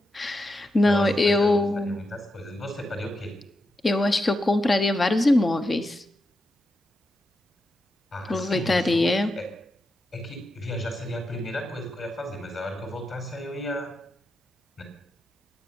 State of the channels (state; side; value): normal; both; correlation 0.87